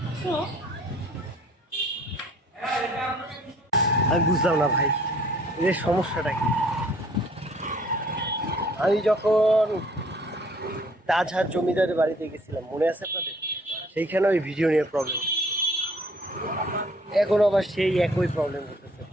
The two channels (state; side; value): normal; both; correlation 0.58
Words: আমি বুঝলাম না ভাই, এর সমস্যাটা কি। আমি যখন তাজহাট জমিদারের বাড়িতে গেছিলাম, মনে আছে আপনাদের? সেইখানে ওই ভিডিও নিয়ে প্রবলেম, এখন আবার সেই একই প্রবলেম করতেছে।